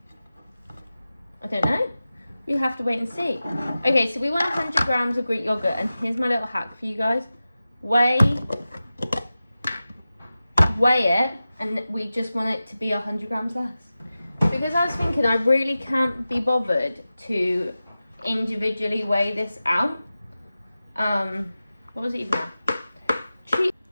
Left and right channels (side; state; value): both; inverted; correlation -0.94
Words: I don't know. We have to wait and see. Okay, so we want 100 grams of Greek yogurt, and here's my little hack for you guys. Weigh it, and we just want it to be 100 grams less. Because I was thinking I really can't be bothered to individually weigh this out. What was it even now?